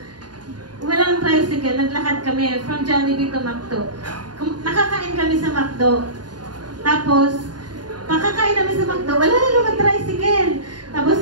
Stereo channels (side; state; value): left; late; 0.70 ms